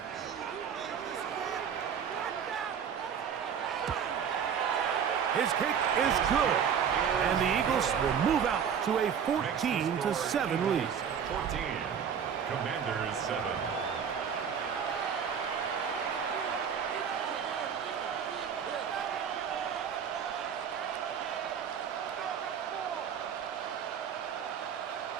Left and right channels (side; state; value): left; quieter; 7.6 dB